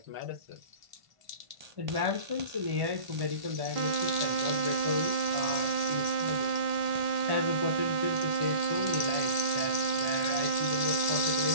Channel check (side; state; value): left; late; 1.5 ms